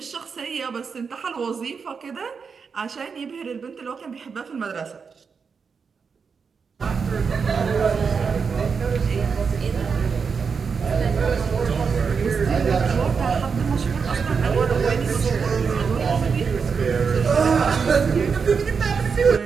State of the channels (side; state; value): left; quieter; 5.7 dB